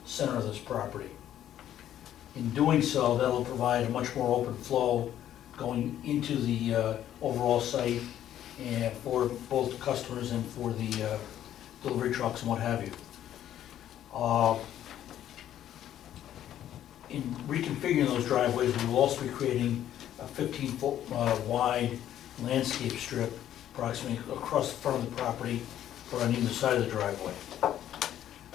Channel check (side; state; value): right; quieter; 11.4 dB